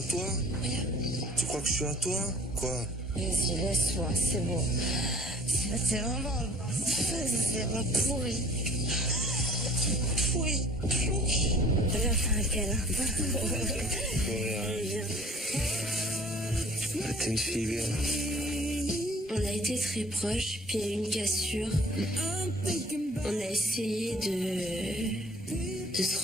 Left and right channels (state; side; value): normal; both; correlation 0.51